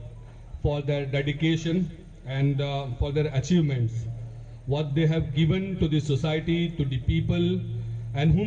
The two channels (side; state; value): both; identical; correlation 1.00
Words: for their dedication and for their achievements, what they have given to the society, to the people and